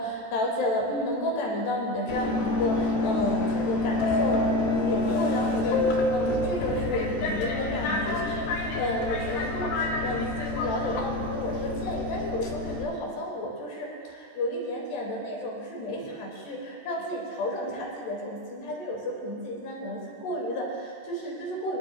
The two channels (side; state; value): right; late; 14 ms